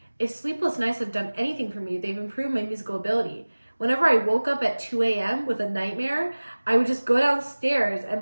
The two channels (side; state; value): both; inverted; correlation -1.00